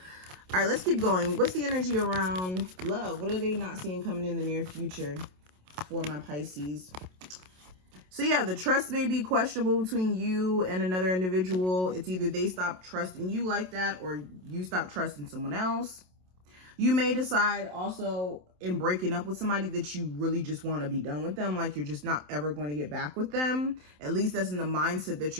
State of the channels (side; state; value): left; late; 27 ms